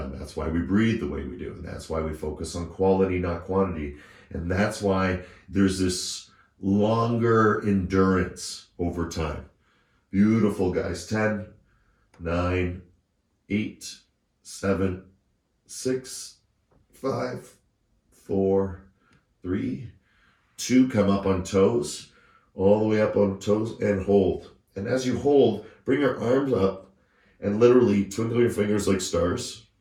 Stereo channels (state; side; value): identical; both; correlation 1.00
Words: That's why we breathe the way we do. And that's why we focus on quality, not quantity. And that's why there's this longer endurance over time. Beautiful, guys. 10, 9, 8, 7, 6, 5, 4, 3, 2. Come up on toes. All the way up on toes and hold. And as you hold, bring your arms up and literally twinkle your fingers like stars,